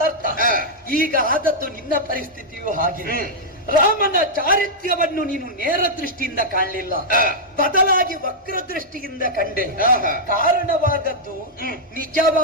ಅರ್ಥ. ಈಗ ಆದದ್ದು ನಿನ್ನ ಪರಿಸ್ಥಿತಿಯು ಹಾಗೆ. ರಾಮನ ಚಾರಿತ್ರ್ಯವನ್ನು ನೀನು ನೇರ ದೃಷ್ಟಿಯಿಂದ ಕಾಣಲಿಲ್ಲ, ಬದಲಾಗಿ ವಕ್ರ ದೃಷ್ಟಿಯಿಂದ ಕಂಡೆ. ಕಾರಣವಾದದ್ದು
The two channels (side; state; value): both; normal; correlation -0.07